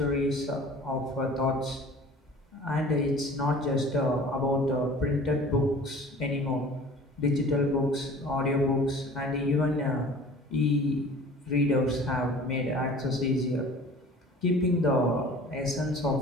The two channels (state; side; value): normal; both; correlation 0.45